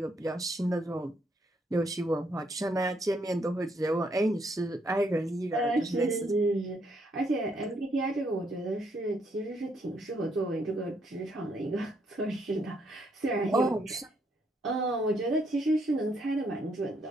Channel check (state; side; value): normal; both; correlation 0.73